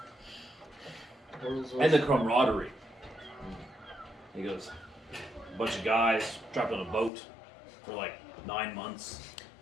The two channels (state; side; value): drops out; right; at 7.1 s